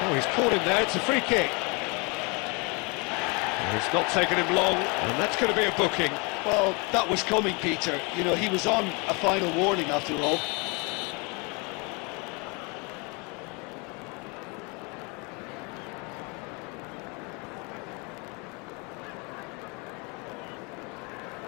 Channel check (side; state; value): right; quieter; 30.7 dB